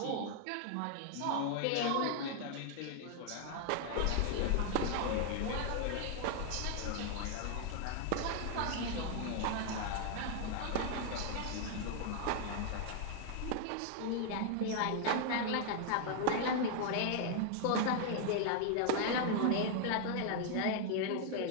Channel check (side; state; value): both; different; correlation 0.00